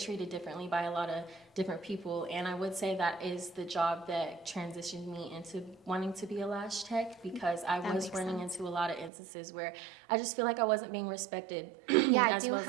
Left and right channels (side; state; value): left; drops out; at 9.1 s